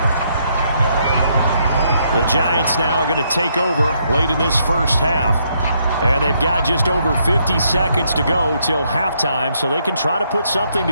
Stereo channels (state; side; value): inverted; both; correlation -0.74